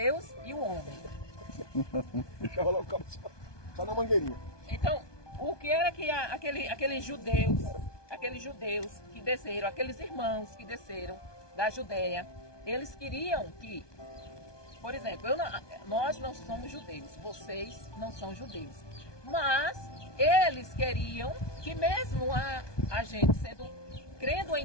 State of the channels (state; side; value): late; right; 1.2 ms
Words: e o homem. Deixava lá o cabo só na mangueirinha. Então, o que era que aqueles judeus que desceram, aqueles irmãos que desceram da Judéia, eles queriam que, por exemplo, nós não somos judeus, vocês não são judeus, mas eles queriam que mesmo a gente crendo